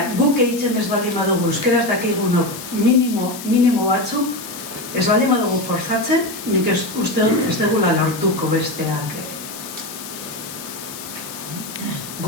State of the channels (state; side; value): noise; left; hiss, 11 dB below the sound